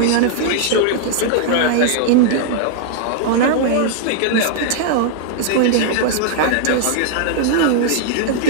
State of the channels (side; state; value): both; different; correlation -0.01